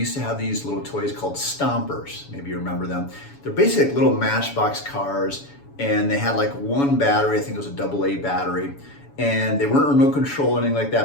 to have these little toys called Stompers. Maybe you remember them. They're basically like little Matchbox cars, and they had like one battery. I think it was a AA battery, and they weren't remote control or anything like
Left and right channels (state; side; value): late; right; 7.1 ms